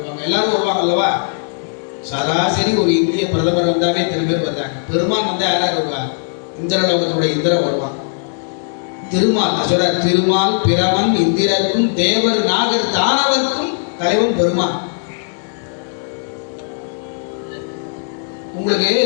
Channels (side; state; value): right; silent; digital silence